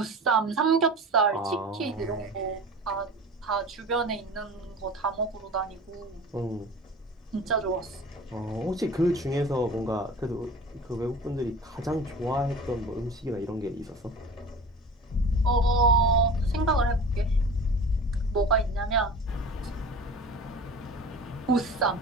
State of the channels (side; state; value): both; normal; correlation 0.38